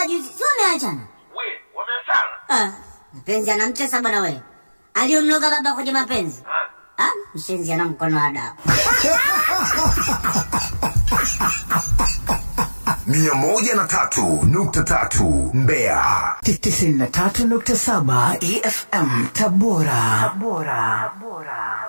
juzi, sio umeachana? Wameachana? Mapenzi anamtesa bwana wewe. Aliyomloga baba kwenye mapenzi. Mshenzi ana mkono wa dawa. 103.3 Mbeya. 93.7 EFM Tabora.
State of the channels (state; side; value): inverted; both; correlation -1.00